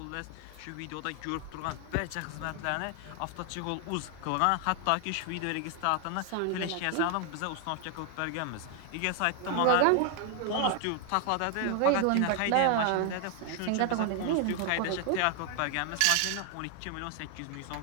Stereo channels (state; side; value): different; both; correlation 0.00